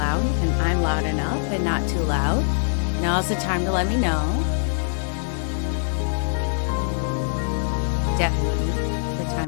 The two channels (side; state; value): right; silent; digital silence